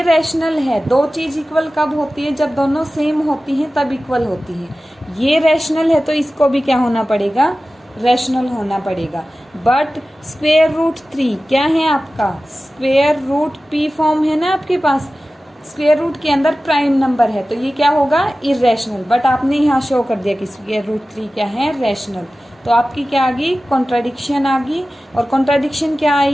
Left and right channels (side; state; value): both; normal; correlation 0.96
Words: रैशनल है, दो चीज इक्वल कब होती है, जब दोनों सेम होती हैं तब इक्वल होती है। ये रैशनल है तो इसको भी क्या होना पड़ेगा, रैशनल होना पड़ेगा। बट स्क्वायर रूट 3 क्या है आपका, स्क्वायर रूट पी फॉर्म है ना आपके पास, स्क्वायर रूट के अंदर प्राइम नंबर है, तो ये क्या होगा इरेशनल। बट आपने यहाँ शो कर दिया कि स्क्वायर रूट 3 क्या है रैशनल, तो आपकी क्या आ गई कॉन्ट्राडिक्शन आ गई। और कॉन्ट्राडिक्शन क्या